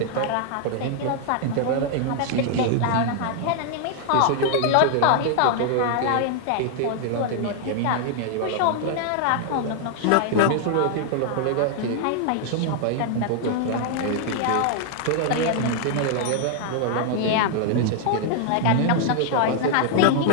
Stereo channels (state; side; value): different; both; correlation 0.00